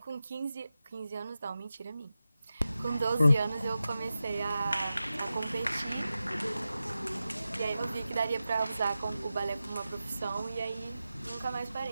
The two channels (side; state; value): both; inverted; correlation -0.93